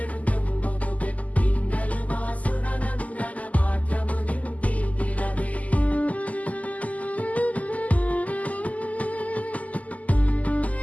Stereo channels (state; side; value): late; right; 0.074 ms